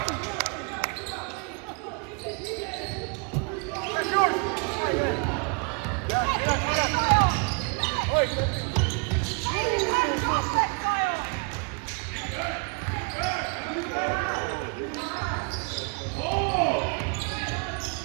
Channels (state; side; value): quieter; left; 34.5 dB